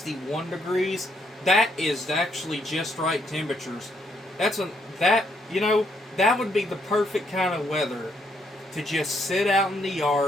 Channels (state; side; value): normal; both; correlation 0.73